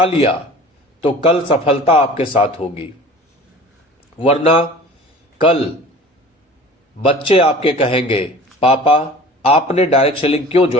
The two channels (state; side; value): normal; both; correlation 0.42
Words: लिया तो कल सफलता आपके साथ होगी, वरना कल बच्चे आपके कहेंगे, पापा आपने डायरेक्ट सेलिंग क्यों